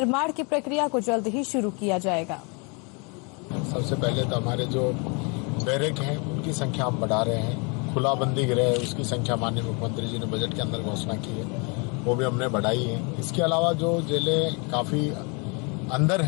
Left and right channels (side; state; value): right; quieter; 32.8 dB